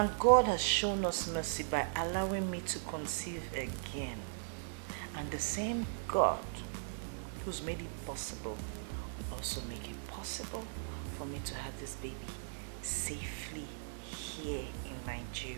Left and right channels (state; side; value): silent; left; 52 dB below the other